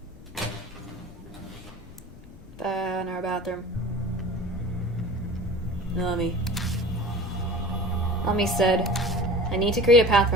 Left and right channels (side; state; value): left; noise; rumble, 19 dB below the sound